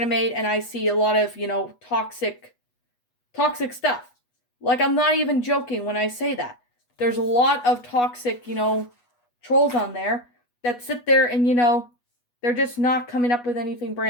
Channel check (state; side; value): late; right; 8.2 ms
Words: and I see a lot of, toxic stuff. Like, I'm not even joking when I say that. There's a lot of toxic, trolls on there that sit there and, they're just not coming up with anything